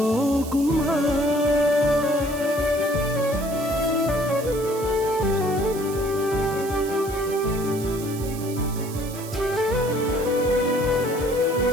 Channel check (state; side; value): noise; right; hiss, 14 dB below the sound